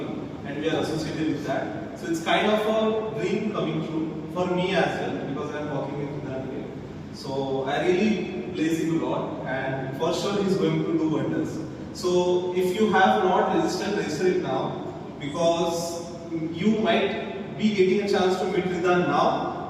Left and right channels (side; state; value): both; identical; correlation 1.00